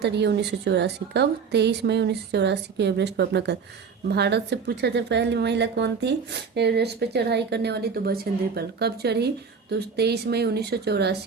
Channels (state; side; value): quieter; left; 5.8 dB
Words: ये 1984। कब, 23 मई 1984 को एवरेस्ट पर अपना कदम। भारत से पूछा जाए पहली महिला कौन थी एवरेस्ट पर चढ़ाई करने वाली, तो बछेंद्री पाल। कब चढ़ी, तो 23 मई